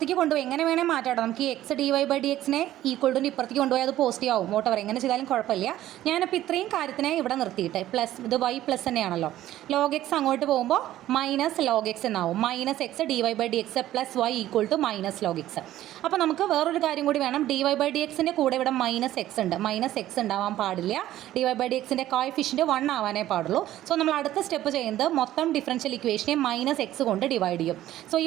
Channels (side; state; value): left; quieter; 13.7 dB